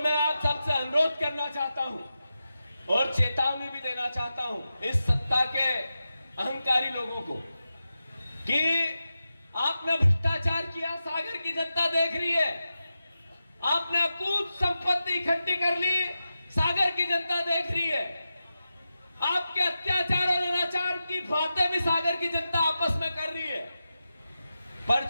मैं आप सबसे अनुरोध करना चाहता हूं और चेतावनी भी देना चाहता हूं इस सत्ता के अहंकारी लोगों को कि आपने भ्रष्टाचार किया, सागर की जनता देख रही है। आपने अकूत संपत्ति इकट्ठी कर ली, सागर की जनता देख रही है। आपके अत्याचार और अनाचार की बातें भी सागर की जनता आपस में कर रही है। पर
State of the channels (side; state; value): both; inverted; correlation -0.91